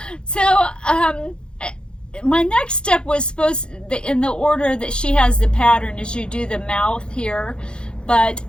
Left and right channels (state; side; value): late; right; 0.051 ms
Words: So, my next step was supposed, in the order that she has the pattern, is you do the mouth here, but